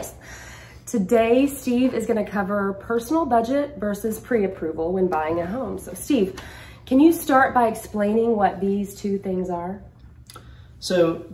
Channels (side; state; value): both; identical; correlation 1.00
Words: Today, Steve is going to cover personal budget versus pre-approval when buying a home. So Steve, can you start by explaining what these two things are? So